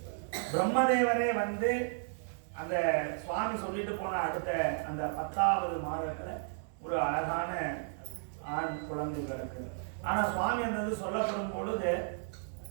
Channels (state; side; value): silent; left; digital silence